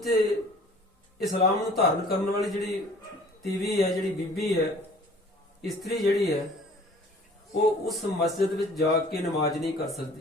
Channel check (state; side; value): normal; both; correlation 0.50